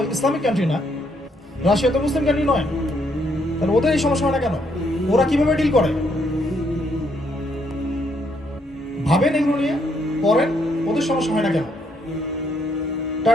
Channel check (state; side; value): normal; both; correlation 0.72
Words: ইসলামিক কান্ট্রি না, রাশিয়া তো মুসলিম কান্ট্রি নয়, তাহলে ওদের এই সমস্যা হয় না কেন? ওরা কিভাবে ডিল করে ভাবেন, এগুলো নিয়ে পড়েন। ওদের সমস্যা হয় না কেন?